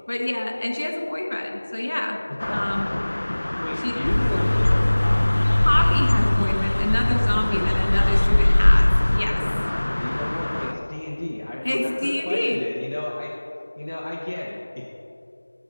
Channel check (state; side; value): inverted; both; correlation -1.00